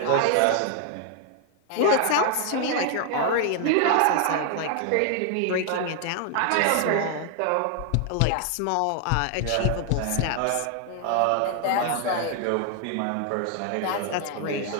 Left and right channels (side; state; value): both; different; correlation 0.00